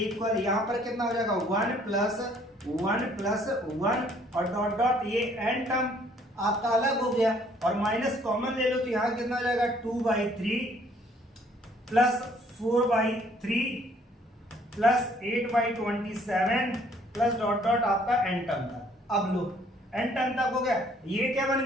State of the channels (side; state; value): both; normal; correlation 0.61